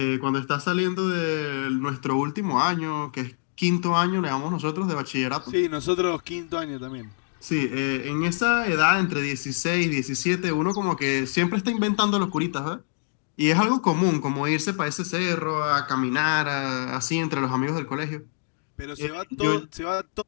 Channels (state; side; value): silent; right; digital silence